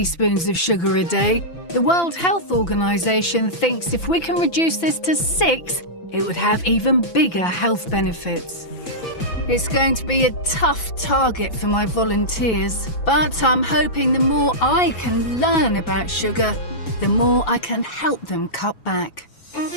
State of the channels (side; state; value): right; late; 6.0 ms